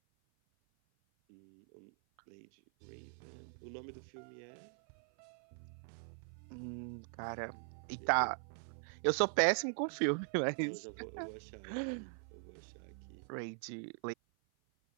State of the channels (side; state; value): left; silent; 50 dB below the other